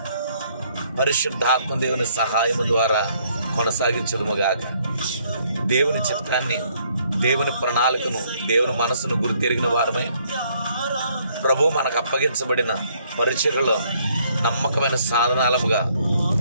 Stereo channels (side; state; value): both; inverted; correlation -0.66